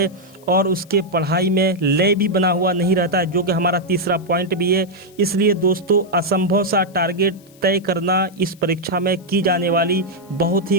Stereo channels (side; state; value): left; noise; hiss, 28 dB below the sound